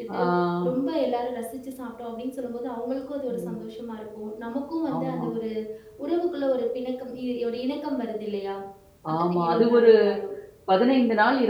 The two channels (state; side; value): identical; both; correlation 1.00